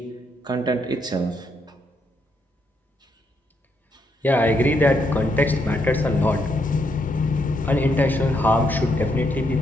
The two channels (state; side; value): normal; both; correlation 0.77